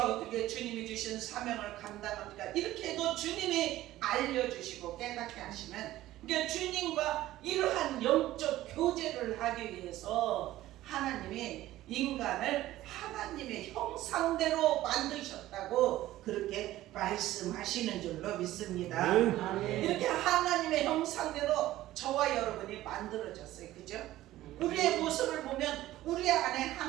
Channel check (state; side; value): quieter; left; 15.2 dB